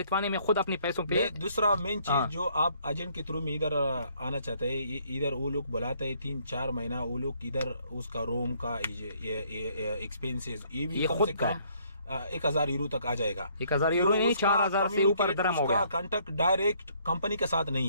में खुद अपने पैसों पे। दूसरा मेन चीज जो आप एजेंट के थ्रू में इधर आना चाहते हैं, इधर वो लोग बुलाते हैं 3-4 महीना, वो लोग इधर उसका रूम का एक्सपेंसेस ये भी कम से कम 1000 यूरो तक आ जाएगा। 1000 यूरो नहीं, 4000 से ऊपर दरम हो गया। उसका कांटेक्ट डायरेक्ट कंपनी के साथ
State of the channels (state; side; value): inverted; both; correlation -0.65